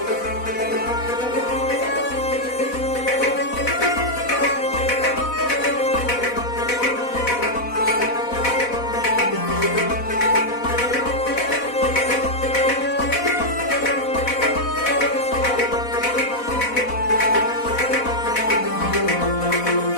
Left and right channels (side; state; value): right; late; 4.1 ms